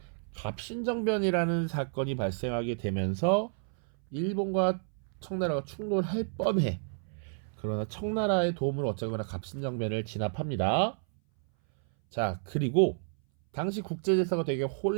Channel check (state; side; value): silent; left; 57 dB below the other